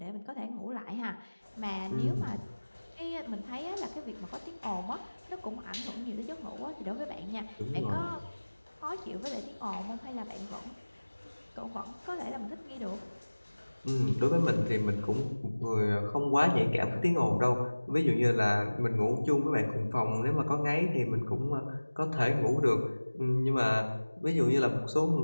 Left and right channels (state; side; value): inverted; both; correlation -1.00